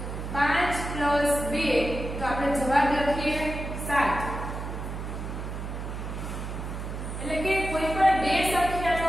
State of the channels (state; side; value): noise; right; hum, 6 dB below the sound